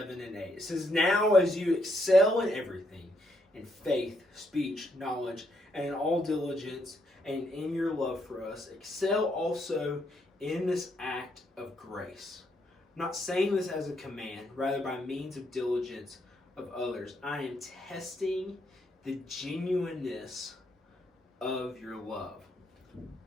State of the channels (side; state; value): both; normal; correlation 0.75